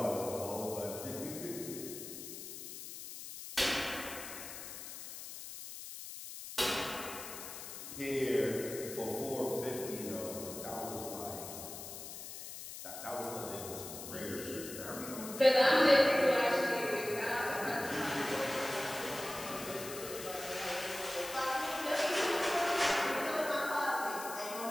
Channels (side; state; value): left; noise; hiss, 10 dB below the sound